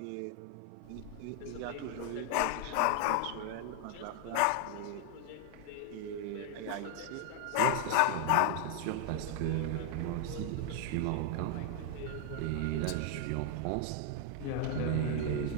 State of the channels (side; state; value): both; different; correlation 0.00